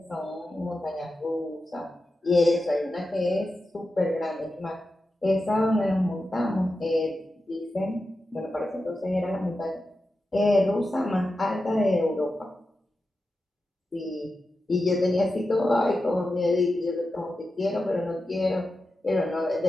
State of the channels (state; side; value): normal; both; correlation 0.91